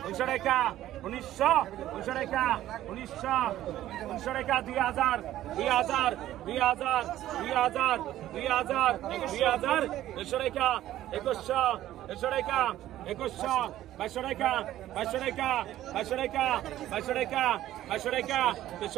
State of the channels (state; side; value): quieter; left; 13.5 dB